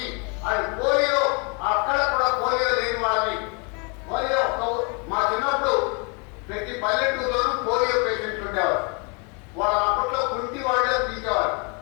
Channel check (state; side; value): quieter; right; 34.5 dB